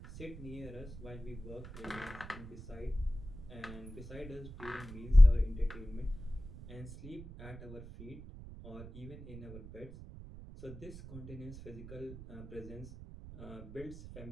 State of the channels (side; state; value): right; noise; rumble, 14 dB below the sound